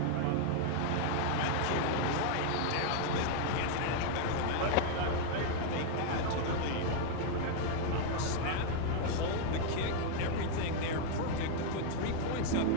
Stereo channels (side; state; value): both; different; correlation 0.00